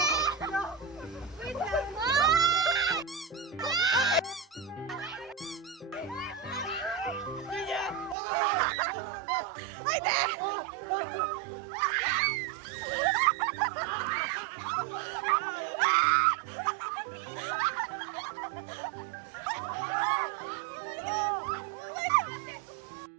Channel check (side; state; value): left; drops out; at 8.2 s